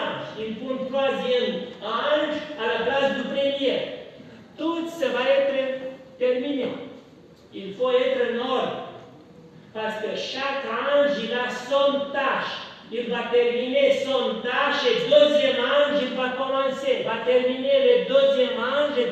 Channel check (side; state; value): both; identical; correlation 1.00